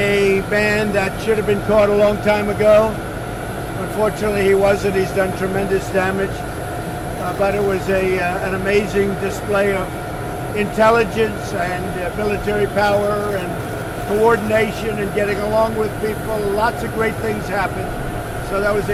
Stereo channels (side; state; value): both; identical; correlation 1.00